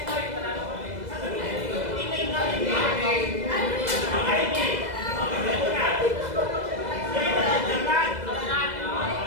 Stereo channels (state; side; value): late; left; 2.0 ms